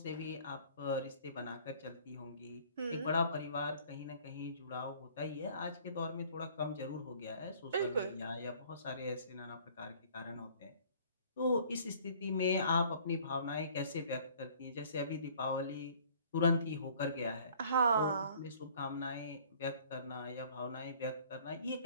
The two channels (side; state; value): both; inverted; correlation -0.54